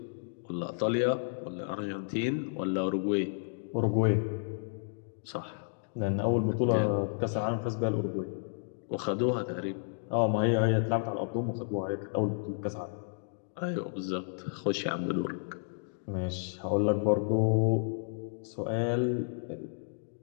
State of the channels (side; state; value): right; silent; digital silence